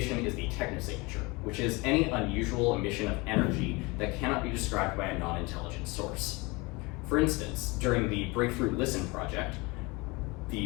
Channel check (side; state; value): right; quieter; 25.0 dB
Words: is the technosignature, which is any unusual emission of energy that cannot be described by a non-intelligent source. For instance, during the Breakthrough Listen project,